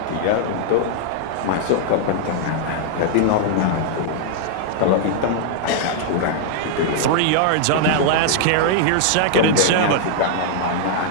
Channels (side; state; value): both; different; correlation -0.01